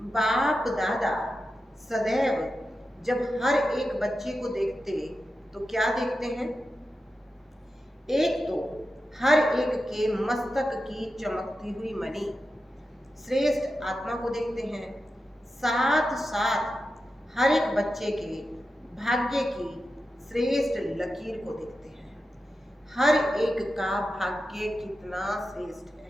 बाप दादा सदैव जब हर एक बच्चे को देखते तो क्या देखते हैं? एक तो हर एक के मस्तक की चमकती हुई मणि, श्रेष्ठ आत्मा को देखते हैं, साथ साथ हर एक बच्चे के भाग्य की श्रेष्ठ लकीर को देखते हैं। हर एक का भाग्य कितना श्रेष्ठ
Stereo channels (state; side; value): normal; both; correlation 0.91